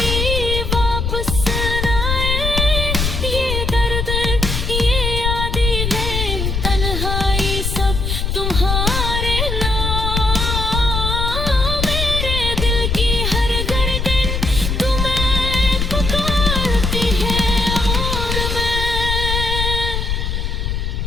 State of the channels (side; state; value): left; noise; rumble, 1 dB below the sound